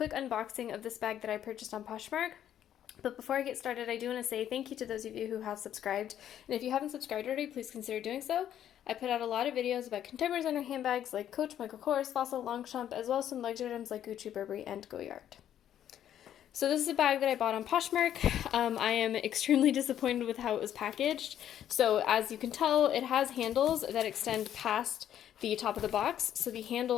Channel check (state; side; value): quieter; right; 10.6 dB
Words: unboxing of this bag that I purchased on Poshmark. But before I get started, I do want to say thank you to those of you who have subscribed. And if you haven't subscribed already, please consider doing so. I put out a lot of videos about contemporary designer handbags like Coach, Michael Kors, Fossil, Longchamp, as well as some luxury items like Gucci, Burberry, and Goyard. So this is a bag that I bought on Poshmark. I am extremely disappointed with how it was packaged. So as you can tell, it has handles that extend past the top of the box. So the